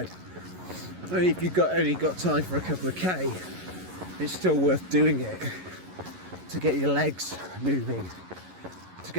if you've only got time for a couple of K, it's still worth doing it to get your legs moving, to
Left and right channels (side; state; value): left; late; 11 ms